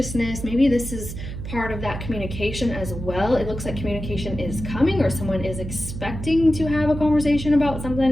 Maybe this is part of that communication as well. It looks like communication is coming or someone is expecting to have a conversation about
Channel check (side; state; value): right; noise; hum, 8 dB below the sound